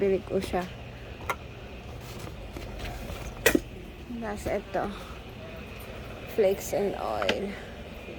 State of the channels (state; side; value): identical; both; correlation 1.00